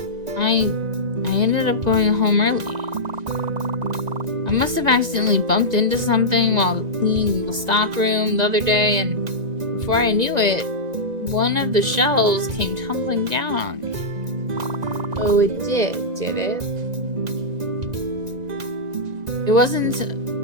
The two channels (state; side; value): late; left; 1.9 ms